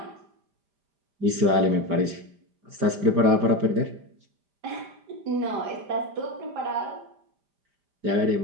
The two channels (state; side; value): late; left; 5.0 ms